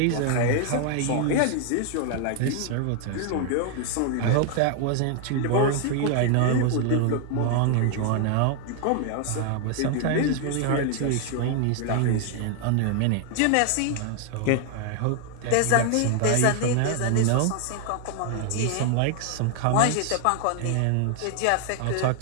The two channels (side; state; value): both; different; correlation 0.00